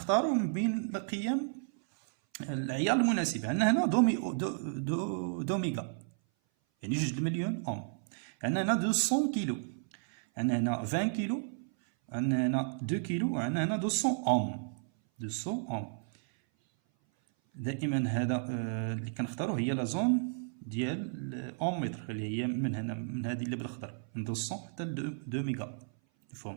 من بين القيم العيار المناسب. عندنا هنا دوميغا يعني 2 مليون اوم. عندنا هنا 200 كيلو عندنا هنا 20 كيلو عندنا هنا 2 كيلو وعندنا هنا 200 اوم 200 اوم. دائما هذا اللي كنختاروا هي لا زون ديال الاوم متر اللي هي من هنا من هذه اللي بالاخضر من 200 حتى ل 2 ميغا.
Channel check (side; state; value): left; silent; 56 dB below the other